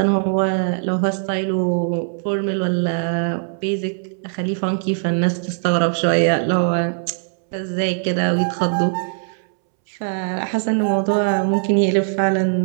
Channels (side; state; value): left; silent; 65 dB below the other